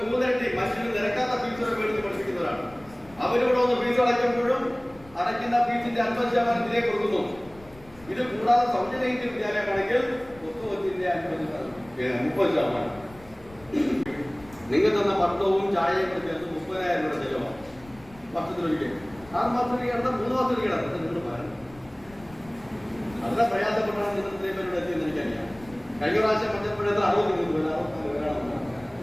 3 ഇരട്ടി മനുഷ്യന് നിരക്കാത്ത ഫീസുകൾ മേടിച്ച് പഠിപ്പിക്കുന്നവരാണ്. അവരോട് ഒന്ന് ഫീസ് അടയ്ക്കുമ്പോഴും അടയ്ക്കുന്ന ഫീസിന്റെ 50% ഇതിലേക്ക് കൊടുക്കുന്നു. ഇത് കൂടാതെ സൗജന്യ വിദ്യാലയമാണെങ്കിൽ പുസ്തകത്തിന്റെ 30%. നിങ്ങൾ തന്ന ഭക്ഷണവും ചായയും കൂടെ ചേർത്ത് 30,000 രൂപ ചെലവാണ് വർഷത്തിലൊരിക്കൽ. 6 മാസത്തിലേക്ക് കിടന്നാൽ 3 മാസത്തിലേക്ക് കിടന്നത് നിങ്ങൾ പറയുന്നത്. വളരെ പ്രയാസപ്പെട്ടാണ് നിങ്ങൾ ഇത്രയും പേരോട് എത്തിയെന്ന് എനിക്കറിയാം. കഴിഞ്ഞ പ്രാവശ്യം പഞ്ചപ്പുഴത്തിൽ 63 പേര് 64 പേരാണ്.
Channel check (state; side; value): noise; left; rumble, 23 dB below the sound